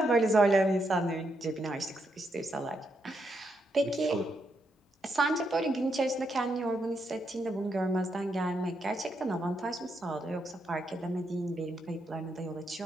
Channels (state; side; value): normal; both; correlation 0.80